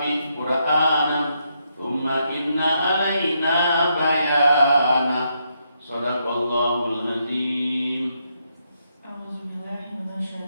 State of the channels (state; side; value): inverted; both; correlation -0.78